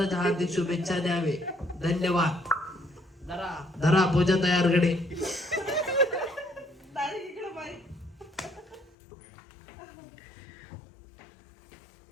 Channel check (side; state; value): right; drops out; at 9.0 s